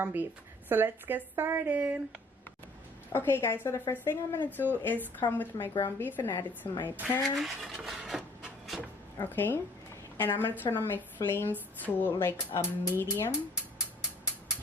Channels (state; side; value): normal; both; correlation 0.56